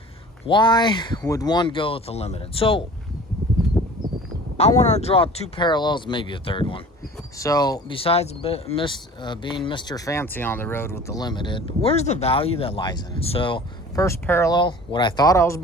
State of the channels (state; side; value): normal; both; correlation 0.44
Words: Why would one go with the limited? So I want to draw two parallels, maybe a third one. So besides being Mr. Fancy on the road with the limited, where's the value that lies in it? So first parallel, what I thought I was